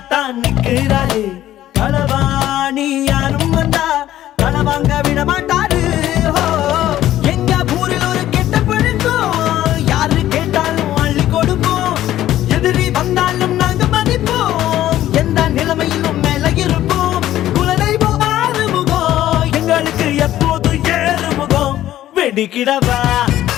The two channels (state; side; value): quieter; right; 13.3 dB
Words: நிற்கிறாரு. களவாணி யாரும் வந்தா களவாங்க விட மாட்டாரு. எங்க ஊரில் ஒரு கெட்ட பழக்கம் யாரு கேட்டாலும் அள்ளி கொடுப்போம். எதிரி வந்தாலும் நாங்க மதிப்போம். எந்த நிலைமையிலும் மேல இருப்போம். குலதெய்வம் ஆறுமுகம் எங்களுக்கு எப்போது ஏறுமுகம். வெடிக்கிடவா